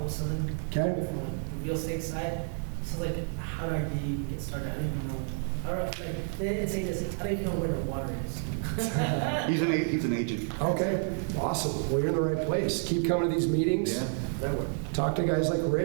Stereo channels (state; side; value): silent; left; 58 dB below the other